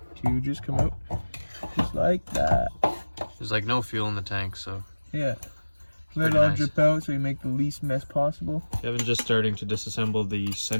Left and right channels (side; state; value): both; inverted; correlation -1.00